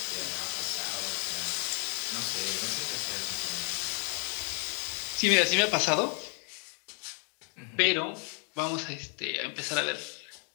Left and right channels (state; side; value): quieter; right; 38.7 dB